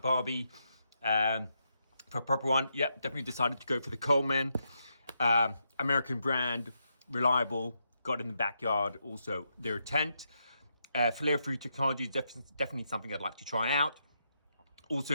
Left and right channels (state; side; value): inverted; both; correlation -0.82